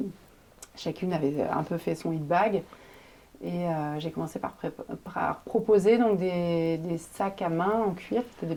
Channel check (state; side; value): identical; both; correlation 1.00